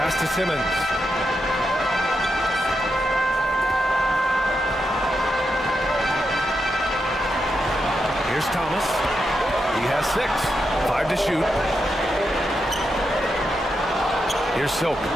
to Simmons. Here's Thomas. He has 6. 5 to shoot. Here's Silk.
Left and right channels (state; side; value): normal; both; correlation 0.85